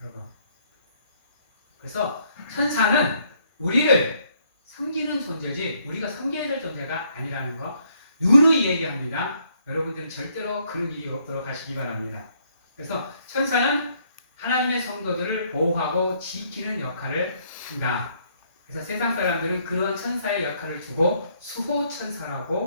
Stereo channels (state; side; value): inverted; both; correlation -0.68